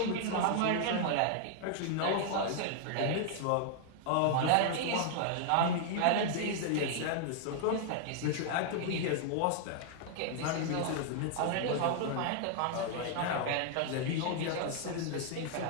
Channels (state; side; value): different; both; correlation 0.00